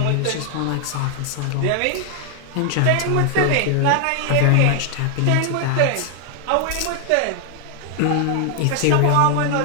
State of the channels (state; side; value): different; both; correlation 0.00